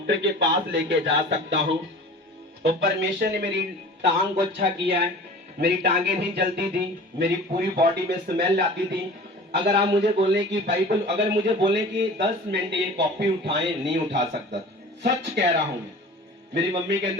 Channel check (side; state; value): both; normal; correlation 0.41